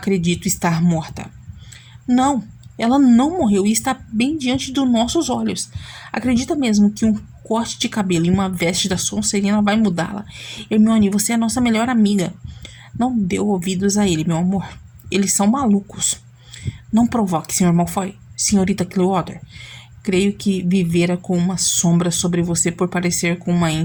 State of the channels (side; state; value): both; identical; correlation 1.00